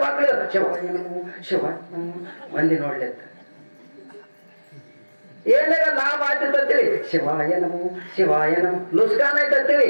ಮಕ್ಕಳು ಶಿವ ಮಂದಿ ನೋಡ್ಲಿಕ್ಕ ಏನಾರ ಲಾಭ ಆಯ್ತಂತೇಳಿ ಶಿವಾಯ ನಮೋ ಶಿವಾಯ ನಮ. ಲುಸ್ಕಾನ್ ಆಯ್ತಂತೇಳಿ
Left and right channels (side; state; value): both; inverted; correlation -1.00